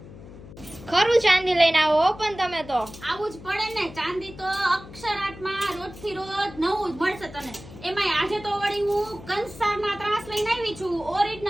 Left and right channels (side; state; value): left; noise; hum, 17 dB below the sound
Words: ખરું ચાંદી લઈને આવો હો પણ તમે તો. આવું જ પડે ને, ચાંદી તો અક્ષરાટમાં રોજથી રોજ નવું જ મળશે તને. એમાંય આજે તો વળી હું કંસારના ત્રાસ લઈને આવી છું,